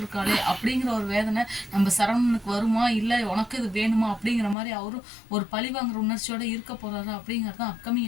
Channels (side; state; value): right; drops out; at 4.5 s